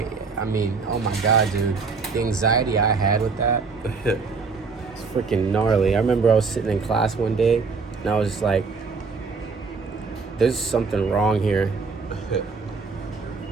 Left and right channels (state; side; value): quieter; left; 4.7 dB